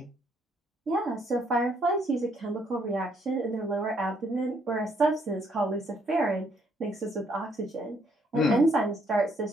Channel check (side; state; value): both; normal; correlation 0.69